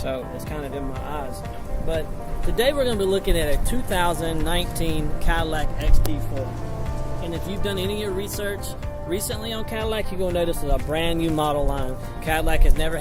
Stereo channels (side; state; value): both; identical; correlation 1.00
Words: it's kind of in my eyes. But today we're going to be looking at a 2019 Cadillac XT4. And if you've done any of your research recently on Cadillac, you're going to notice it's a brand new model line. Cadillac has never